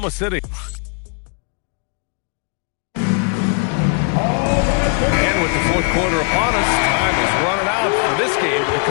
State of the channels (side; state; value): right; quieter; 38.0 dB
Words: City. And with the fourth quarter upon us, time is running out for this game to